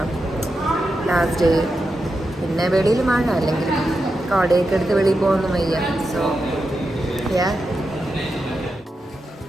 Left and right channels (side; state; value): both; normal; correlation 0.88